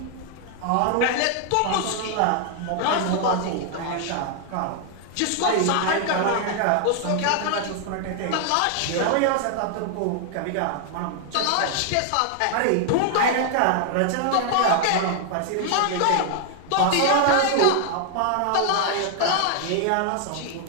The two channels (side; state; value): both; different; correlation 0.00